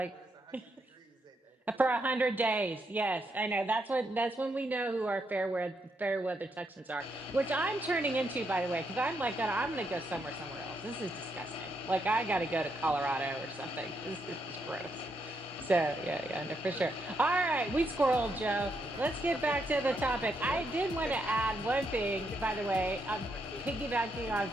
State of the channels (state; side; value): normal; both; correlation 0.79